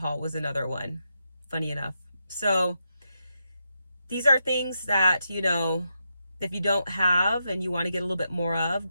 was another one, funny enough. So these are things that, you know, if you don't have and you want to get a little bit more of,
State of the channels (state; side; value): inverted; both; correlation -0.84